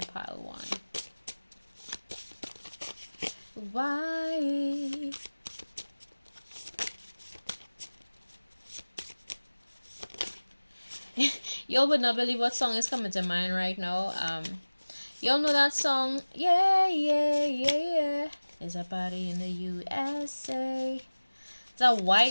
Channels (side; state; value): both; inverted; correlation -1.00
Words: one? Why? Y'all would not believe what song is coming to mind right now. Y'all know that song? Yeah, yeah, yeah, yeah. It's a party in the USA. It's a